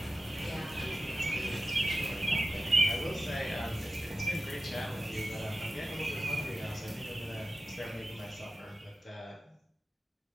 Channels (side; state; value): both; normal; correlation 0.93